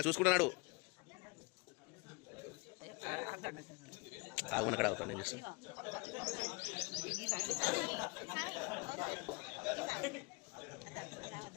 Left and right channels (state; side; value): quieter; right; 29.1 dB